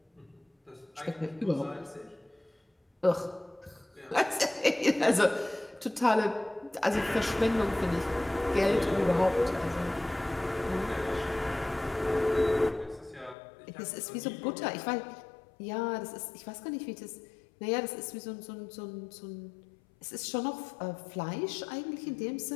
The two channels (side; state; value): right; drops out; at 13.4 s